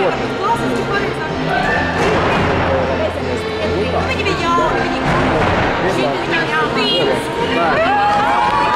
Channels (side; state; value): both; identical; correlation 1.00